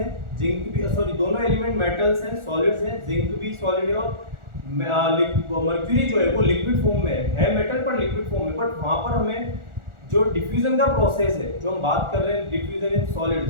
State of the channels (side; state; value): left; late; 1.4 ms